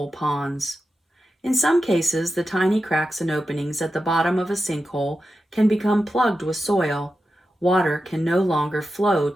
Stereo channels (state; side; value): normal; both; correlation 0.91